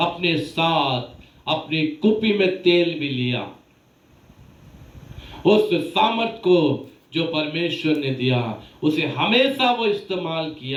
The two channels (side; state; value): both; identical; correlation 1.00